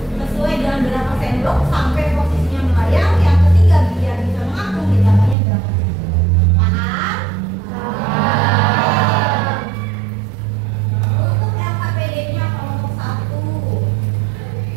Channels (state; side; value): drops out; left; at 5.4 s